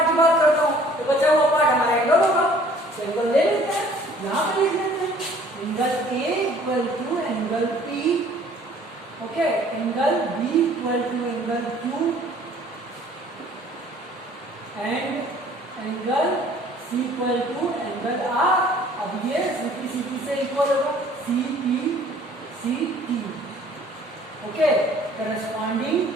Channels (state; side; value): normal; both; correlation 0.55